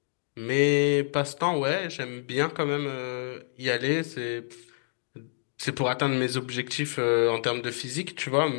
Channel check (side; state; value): right; silent; digital silence